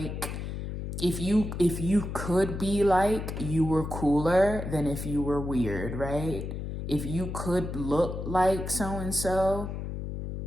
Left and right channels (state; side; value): noise; left; hum, 6 dB below the sound